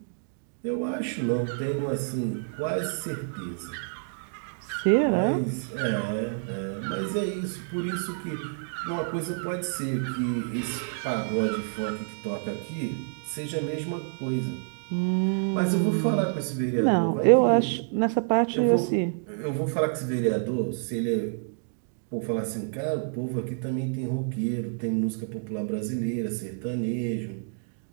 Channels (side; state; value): left; silent; digital silence